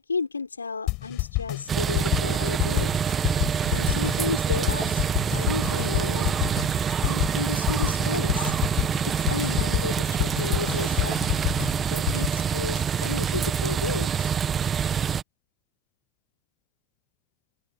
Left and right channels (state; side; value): normal; both; correlation 0.40